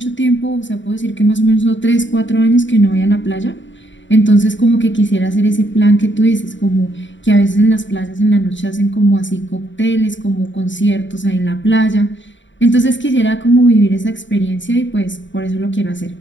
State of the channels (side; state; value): right; late; 0.54 ms